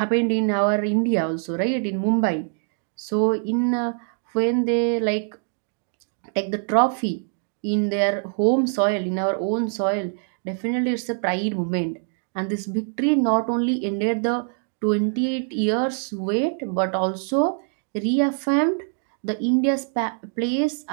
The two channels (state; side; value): silent; left; 63 dB below the other